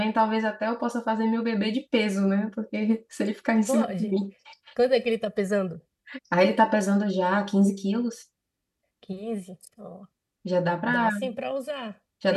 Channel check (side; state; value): both; identical; correlation 1.00